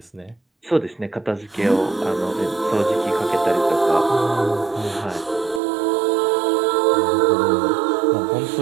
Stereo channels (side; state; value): left; drops out; at 5.6 s